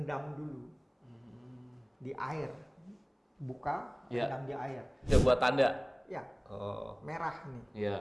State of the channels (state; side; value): identical; both; correlation 1.00